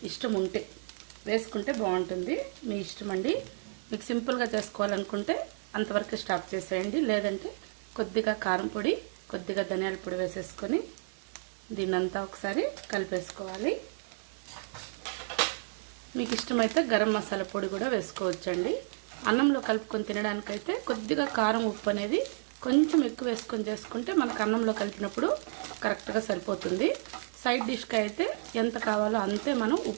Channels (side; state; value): left; silent; digital silence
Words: ఇష్టం ఉంటే వేసుకుంటే బాగుంటుంది. మీ ఇష్టం అండి. మీకు సింపుల్గా చేసుకోవాలనుకుంటే అంతవరకు స్టాప్ చేసేయండి. లేదంటే కొద్దిగా కారం పొడి, కొద్దిగా ధనియాల పొడి వేసేసుకొని దీన్నంతా ఒకసారి కలిపేసుకోవాలి. మీకు ఇష్టమైతే గరం మసాలా పొడి కూడా వేసుకోవచ్చండి. అన్నంలో కలుపుకొని తినడానికైతే కొద్దిగా కారం, ఉప్పు అనేది కొంచెం ఎక్కువ వేసుకొని చేసుకుంటే మనకు అన్నంలో కలిపినప్పుడు కరెక్ట్గా సరిపోతుంది. సైడ్ డిష్కి అయితే ఎంత కావాలో అంతే మనం